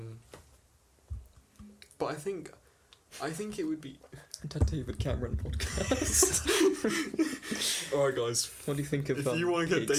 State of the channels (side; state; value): both; identical; correlation 1.00